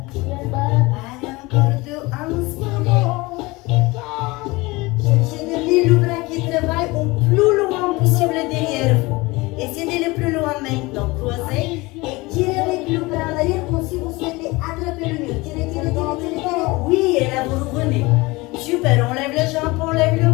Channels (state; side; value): quieter; right; 22.7 dB